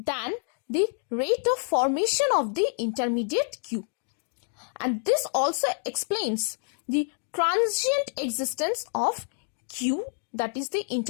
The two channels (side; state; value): right; silent; 56 dB below the other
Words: the rate of formation of the intermediate Q. And this also explains the transient existence of Q, that is the